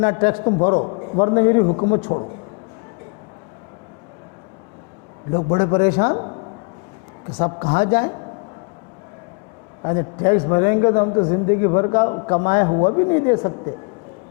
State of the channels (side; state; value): right; quieter; 34.9 dB